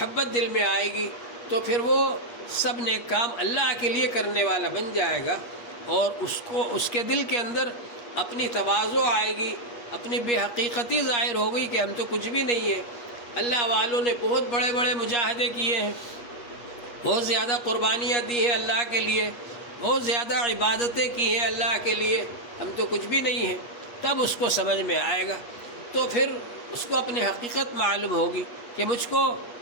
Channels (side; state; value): right; late; 8.4 ms